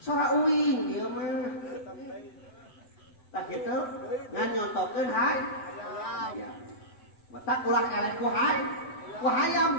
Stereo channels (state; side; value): late; right; 7.9 ms